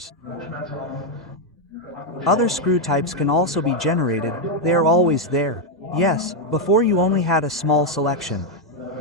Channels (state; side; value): normal; both; correlation 0.02